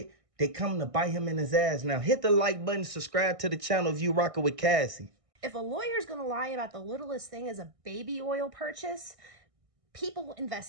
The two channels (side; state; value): left; late; 1.6 ms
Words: they come to bite him in his ass now. Hit the like button, subscribe to the channel if you rocking with Cassie. If a lawyer's going to lie about the littlest thing as a baby oil purchase, people